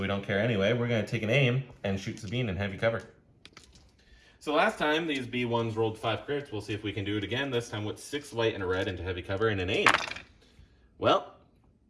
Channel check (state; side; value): identical; both; correlation 1.00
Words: we don't care anyway. We're going to take an aim and shoot Sabine in heavy cover. So last time, these B1s rolled 5 crits. We'll see if we can do it again, this time with 6 white and a red into heavy cover and an aim. Well,